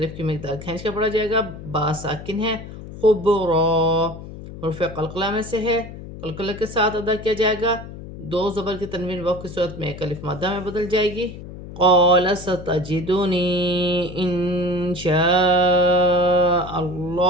کی مقدار کھینچ کر پڑھا جائے گا۔ با ساکن ہے، خبرا حرف قلقلہ میں سے ہے، قلقلہ کے ساتھ ادا کیا جائے گا۔ دو زبر کی تنوین وقف کی صورت میں ایک الف مادہ میں بدل جائے گی۔ قال ستجدنی ان شاء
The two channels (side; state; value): left; noise; hum, 13 dB below the sound